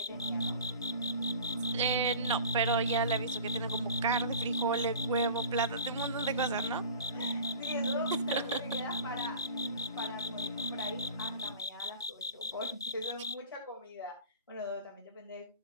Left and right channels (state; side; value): inverted; both; correlation -0.40